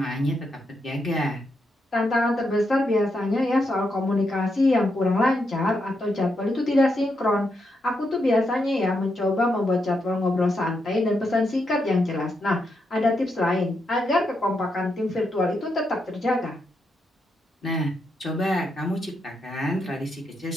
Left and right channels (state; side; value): normal; both; correlation 0.82